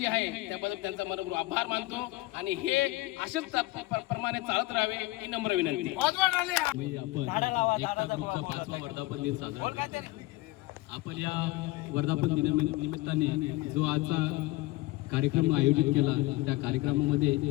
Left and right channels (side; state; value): right; quieter; 19.8 dB